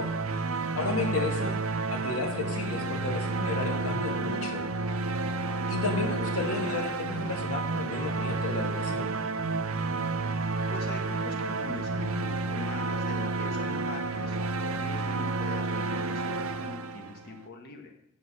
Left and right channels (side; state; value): both; normal; correlation 0.22